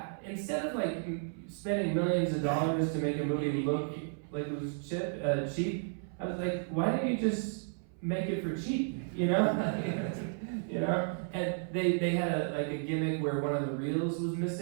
of like spending millions of dollars to make a movie look like it was cheap, I was like, why didn't you just make it for cheap, And they had a gimmick where one of the reels was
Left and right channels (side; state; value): left; silent; 56 dB below the other